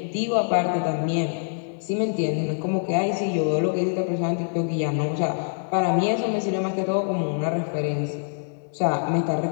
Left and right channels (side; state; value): right; silent; 62 dB below the other